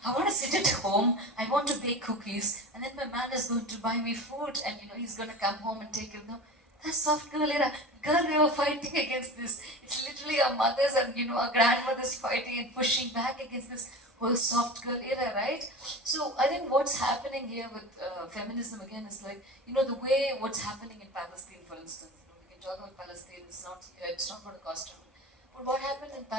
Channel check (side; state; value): both; normal; correlation 0.32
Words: I want to sit at home, I want to bake cookies, and then my man is going to buy me food, and he's going to come home and take it. No, that's soft girl era. Girl, we were fighting against this. It's literally our mothers and our grandmothers fighting and pushing back against this whole soft girl era, right? So I think what's happening here with feminism again is like, the way what's happening in Palestine, for instance. We can talk about Palestine. It's not going to cost trouble. But what happened in